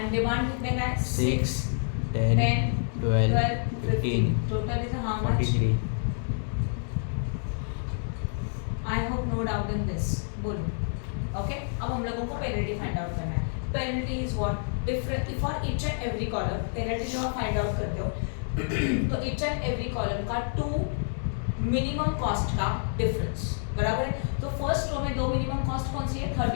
डिमांड कितने का है? 6 10 12 15 total is how much? 43 I hope no doubt in this. बोलो। ओके, अब हम लोगों को पेनल्टी फाइंड आउट करना है। Penalty is what? Different for each and every column. Penalty जो आप फाइंड आउट करते हो तो ईच एंड एवरी कॉलम का 2 मिनिमम कॉस्ट का डिफरेंस, बराबर है? तो फर्स्ट रो में 2 मिनिमम कॉस्ट कौन सी है?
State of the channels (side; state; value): right; silent; digital silence